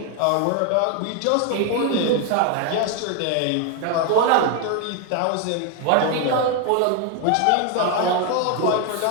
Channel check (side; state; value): both; different; correlation 0.01